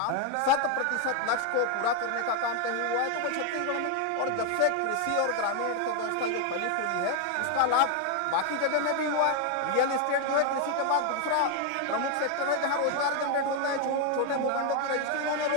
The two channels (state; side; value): different; both; correlation 0.01